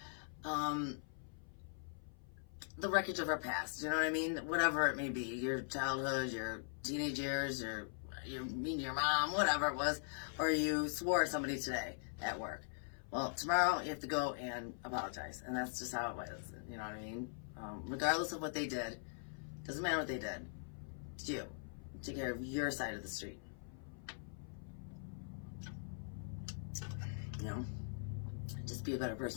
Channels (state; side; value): silent; right; 50 dB below the other